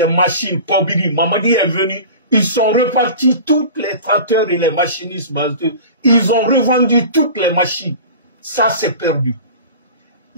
machines, Kobiri, Mamadi est venu, ils sont repartis tous les tracteurs et les machinistes. Ils ont revendu toutes les machines. Ça, c'est perdu.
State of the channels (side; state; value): both; inverted; correlation -0.36